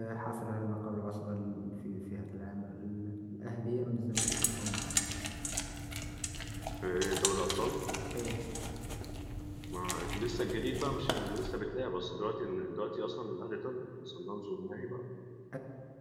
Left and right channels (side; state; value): both; identical; correlation 1.00